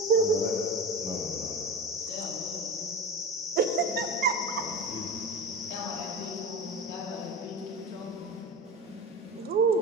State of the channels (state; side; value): normal; both; correlation 0.28